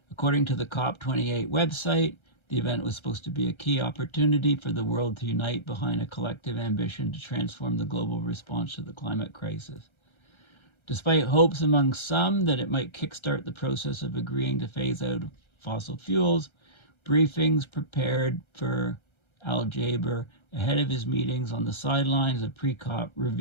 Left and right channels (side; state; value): right; late; 1.3 ms